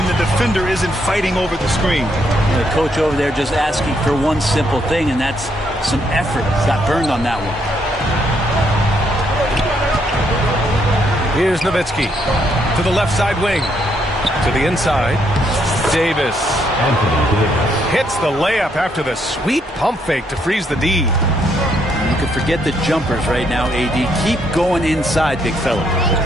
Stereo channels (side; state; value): both; normal; correlation 0.73